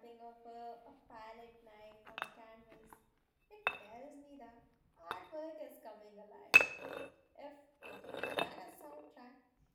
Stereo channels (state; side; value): identical; both; correlation 1.00